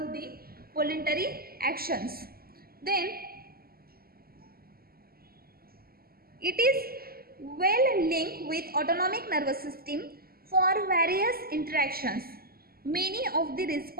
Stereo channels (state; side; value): late; left; 0.44 ms